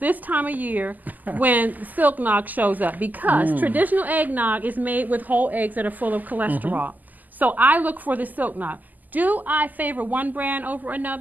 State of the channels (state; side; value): late; left; 0.083 ms